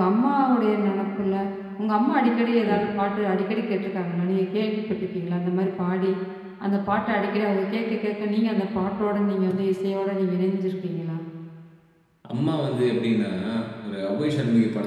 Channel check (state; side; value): identical; both; correlation 1.00